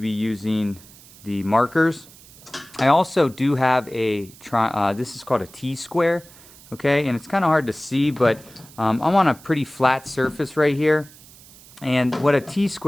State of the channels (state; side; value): noise; right; hiss, 22 dB below the sound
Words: be using the markers. I also do have a this is called a T-square, okay, and it's kind of hard to see, but I'm on a pretty flat surface right here, and what a